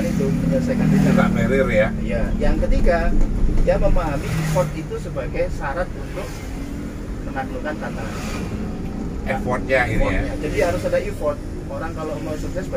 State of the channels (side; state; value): both; identical; correlation 1.00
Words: itu, menyelesaikan rintangan. Barrier ya. Iya. Yang ketiga, dia memahami effort itu sebagai syarat untuk menaklukkan tantangan. Effortnya ini ya. Jadi harus ada effort. Orang kalau mau sukses